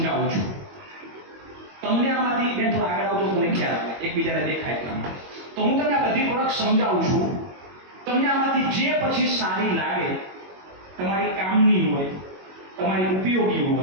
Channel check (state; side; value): late; left; 21 ms